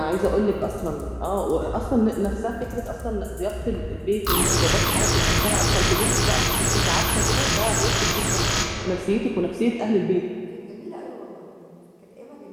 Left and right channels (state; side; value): identical; both; correlation 1.00